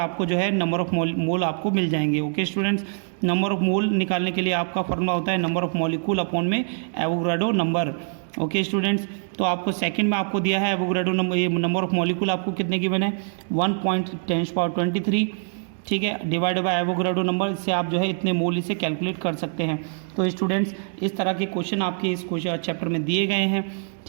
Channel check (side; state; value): left; silent; 62 dB below the other